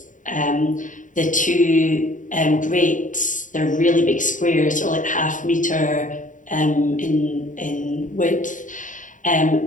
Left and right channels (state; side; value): late; right; 0.37 ms